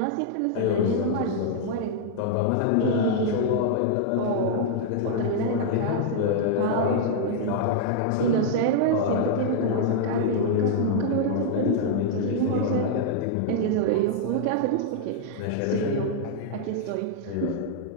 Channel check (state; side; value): different; both; correlation -0.01